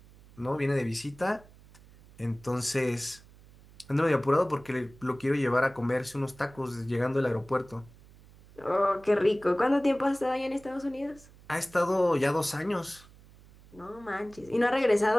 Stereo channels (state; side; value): noise; right; hum, 24 dB below the sound